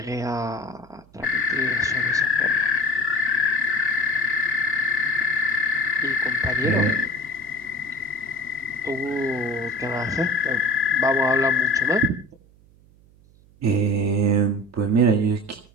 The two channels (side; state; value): right; noise; hum, 28 dB below the sound